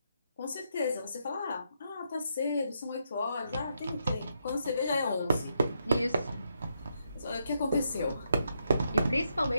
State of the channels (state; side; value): inverted; both; correlation -0.79